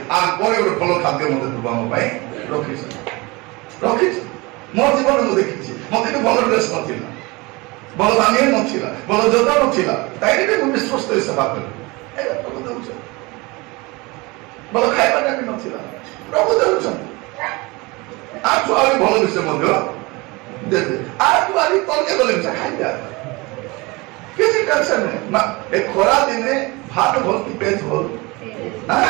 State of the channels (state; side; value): quieter; left; 24.6 dB